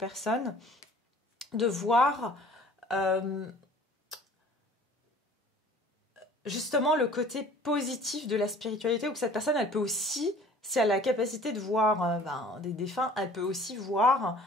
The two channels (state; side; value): normal; both; correlation 0.49